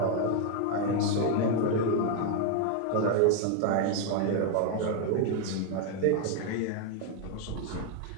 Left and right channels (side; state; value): both; different; correlation 0.01